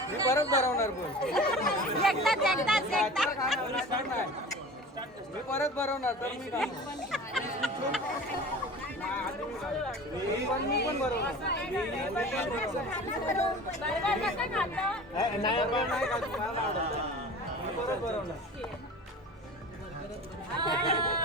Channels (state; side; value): normal; both; correlation 0.38